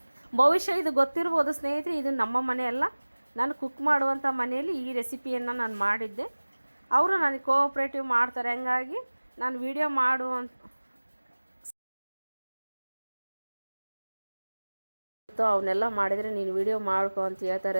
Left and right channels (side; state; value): both; inverted; correlation -1.00